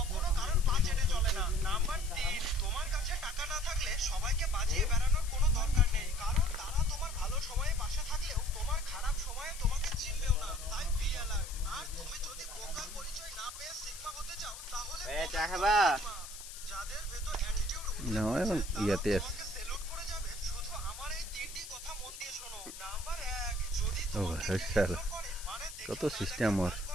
কারোর পা চেটে চলে না। নাম্বার 3, তোমার কাছে টাকা না থাকলে সবাইকে বাজিয়ে বেড়ানোর কোনো দরকার নেই, কারণ তারা তোমার ভালো সময়ে পাশে থাকলেও তোমার খারাপ সময়ে তোমাকে চিনবেও না। তাই বি অ্যালার্ট। আর তুমি যদি বোকা পরিচয় না পেয়ে সিগমা হতে চাও, তাহলে চা খাবা? যাদের ভেতর অ্যাটিটিউড না রয়েছে তারা ইয়াতে আছে। তোমাকে সেলুট করে যাবে। শুধু আমার এই তিনটি কথা মন দিয়ে শোনো। নাম্বার 1, যদি ও তোমাকে কেউ শালা, ইগনোর করে, মানে কত দেখে না সিস্টেম দেখার ওর। ভান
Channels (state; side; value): noise; left; hiss, 12 dB below the sound